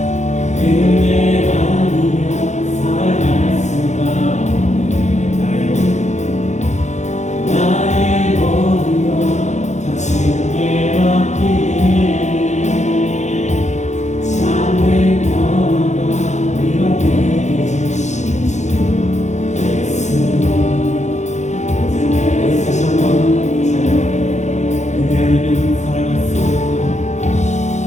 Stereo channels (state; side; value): late; right; 0.34 ms